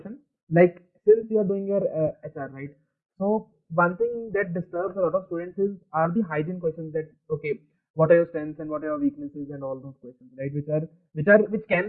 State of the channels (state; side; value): identical; both; correlation 1.00